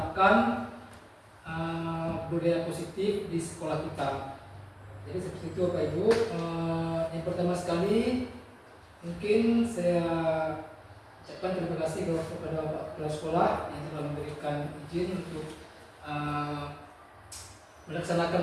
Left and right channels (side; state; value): both; identical; correlation 1.00